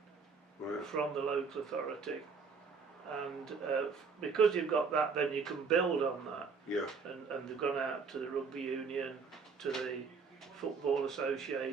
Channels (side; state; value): left; quieter; 5.1 dB